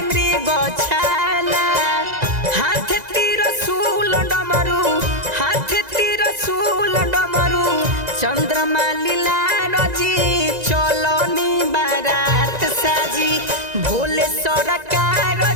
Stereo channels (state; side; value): late; left; 2.0 ms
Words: मृग छाला। हाथ त्रिशूल डमरू हाथ त्रिशूल डमरू चंद्रमा लीला रजी चलनी बारात साजी भोले सरकार